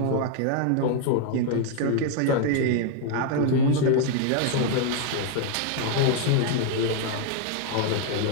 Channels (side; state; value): both; different; correlation 0.00